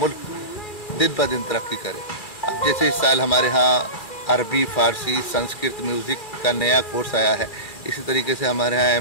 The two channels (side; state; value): right; late; 2.4 ms